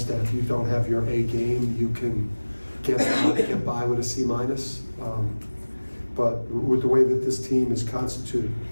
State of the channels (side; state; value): both; inverted; correlation -1.00